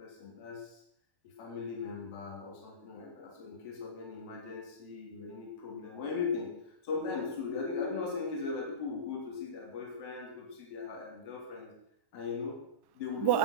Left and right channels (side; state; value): left; late; 1.1 ms